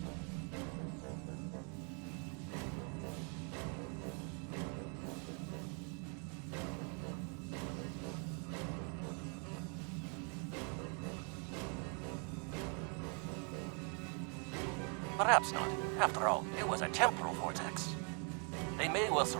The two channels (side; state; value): left; quieter; 38.3 dB